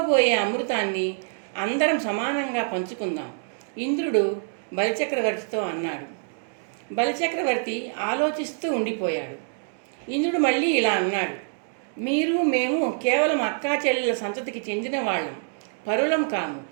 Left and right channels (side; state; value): left; silent; digital silence